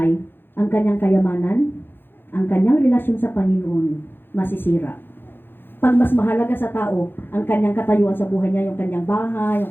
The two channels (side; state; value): right; late; 0.10 ms